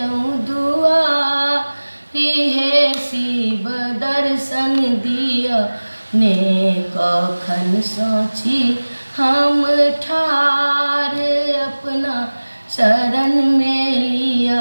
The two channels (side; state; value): both; inverted; correlation -1.00